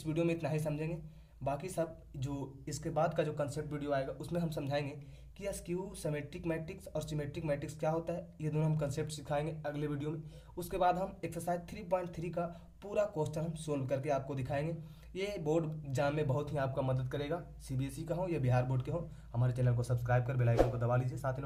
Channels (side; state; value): both; identical; correlation 1.00